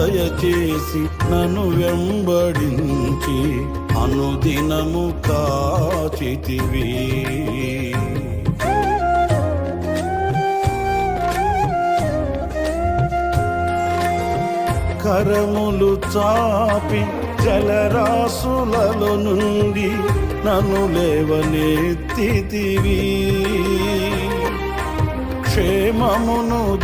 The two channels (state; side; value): identical; both; correlation 1.00